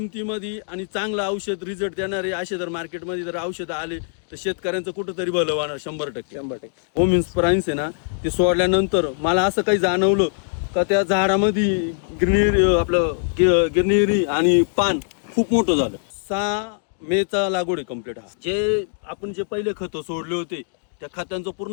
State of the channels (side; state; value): right; silent; digital silence